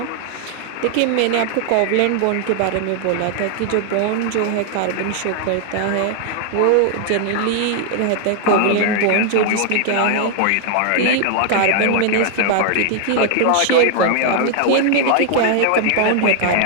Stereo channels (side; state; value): both; different; correlation 0.00